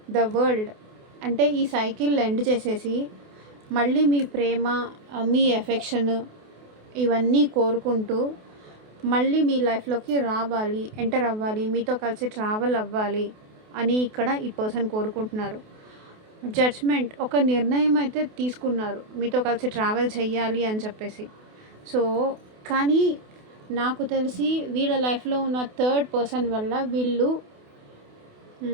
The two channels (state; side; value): late; left; 28 ms